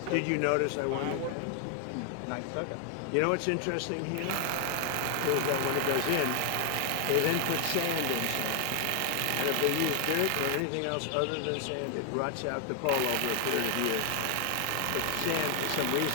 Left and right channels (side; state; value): both; different; correlation 0.00